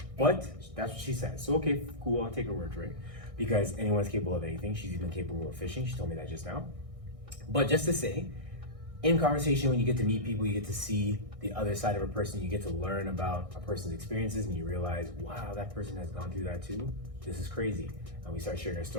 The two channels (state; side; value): late; left; 1.6 ms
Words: But that's what she said. So okay, cool, I'll take her word for it, because anyone's capable of anything. She's even capable of fishing. She told me that just now. But just to say, in conversation, when you get to meet people, you get to see the other side of a person, you get to learn about a person's experiences, and you realize, wow, that person has gone through that too. This is crazy. And we start sharing our